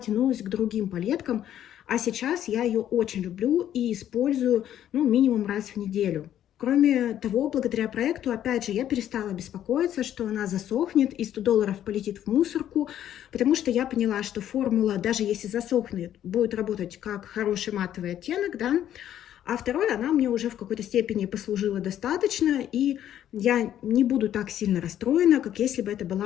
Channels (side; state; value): right; quieter; 11.1 dB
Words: к другим палеткам. А сейчас я ее очень люблю и использую, ну, минимум раз в неделю. Кроме того, благодаря проекту, опять же, я перестала беспокоиться, что она засохнет и $100 полетит в мусорку, потому что я поняла, что формула, даже если засохнет, будет работать как хороший матовый оттенок, да. А второе, она мне уже в какой-то степени послужила достаточно, и я не буду так сильно расстроена, как если бы это